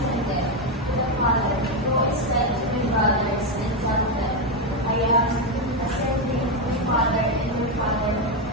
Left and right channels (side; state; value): both; normal; correlation 0.07